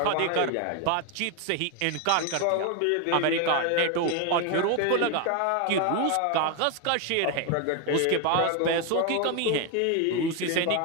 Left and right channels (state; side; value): different; both; correlation 0.01